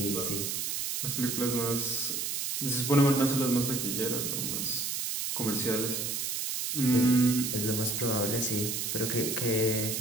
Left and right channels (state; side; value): noise; right; hiss, 2 dB below the sound